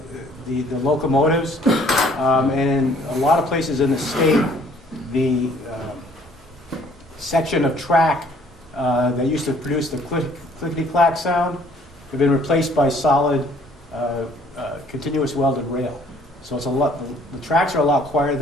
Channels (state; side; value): normal; both; correlation 0.59